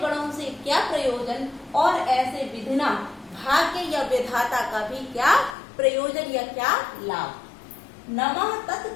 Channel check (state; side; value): drops out; right; at 5.6 s